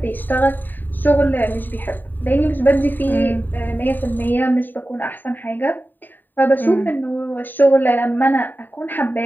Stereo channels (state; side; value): late; right; 0.090 ms